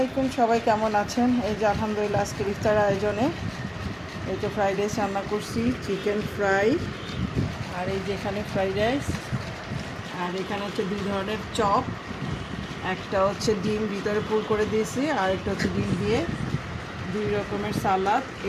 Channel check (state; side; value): identical; both; correlation 1.00